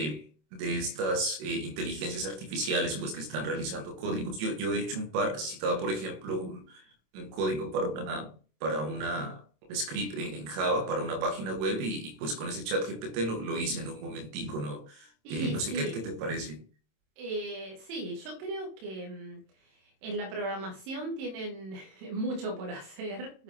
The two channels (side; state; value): left; late; 27 ms